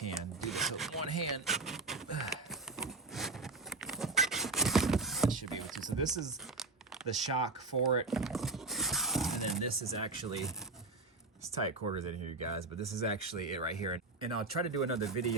do this with one hand. I should be able to. So this is the shock for it, and then this is actually, it's tight quarters in here, you guys, but this is actually it right here. And I'll try to do another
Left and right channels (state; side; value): quieter; left; 3.4 dB